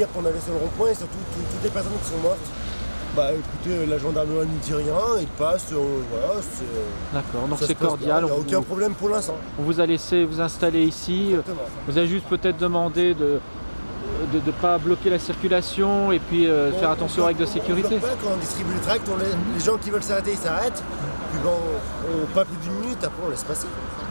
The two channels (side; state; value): both; inverted; correlation -1.00